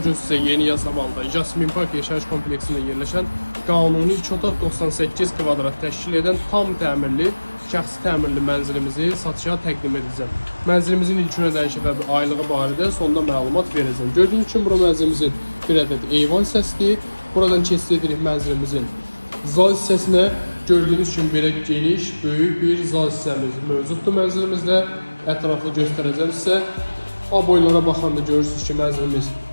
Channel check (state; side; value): inverted; both; correlation -1.00